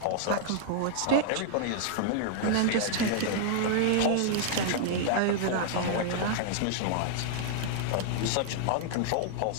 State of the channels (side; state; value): both; different; correlation -0.01